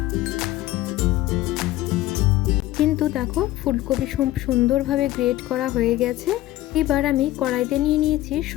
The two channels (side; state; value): right; quieter; 15.8 dB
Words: কিন্তু দেখো, ফুলকপি সুন্দরভাবে গ্রেট করা হয়ে গেছে। এবার আমি কড়াইতে নিয়ে নিয়েছি